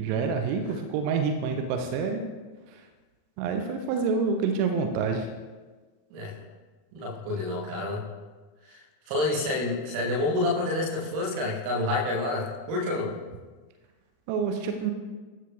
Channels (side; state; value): left; late; 37 ms